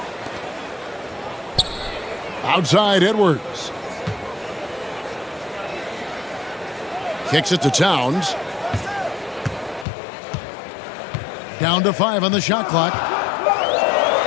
Outside Edwards. Kicks it to Towns. Down to 5 on the shot clock.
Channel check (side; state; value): right; drops out; at 9.9 s